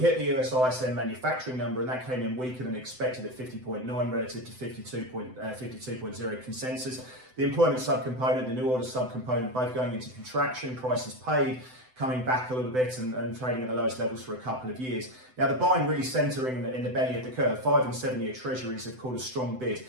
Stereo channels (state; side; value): late; left; 7.9 ms